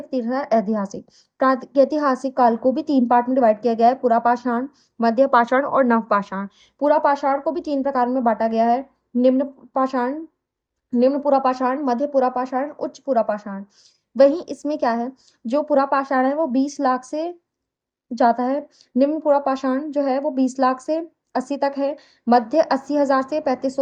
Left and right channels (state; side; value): identical; both; correlation 1.00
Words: तीसरा है ऐतिहासिक। प्रागैतिहासिक काल को भी 3 पार्ट में डिवाइड किया गया है, पुरापाषाण, मध्य पाषाण और नवपाषाण। पुरापाषाण को भी 3 प्रकार में बाँटा गया है, निम्न पाषाण, निम्न पुरापाषाण, मध्य पुरापाषाण, उच्च पुरापाषाण। वहीं इसमें क्या है, जो पुरापाषाण है वो 20 लाख से जाता है। निम्न पुरापाषाण जो है वो 20 लाख से 80 तक है, मध्य 80,000 से